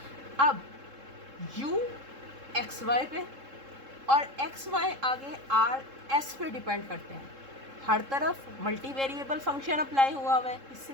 अब u एक्स वाई पे और एक्स वाई आगे आर एस पे डिपेंड करते हैं, हर तरफ मल्टी वेरिएबल फंक्शन अप्लाई हुआ है,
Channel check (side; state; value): left; late; 3.7 ms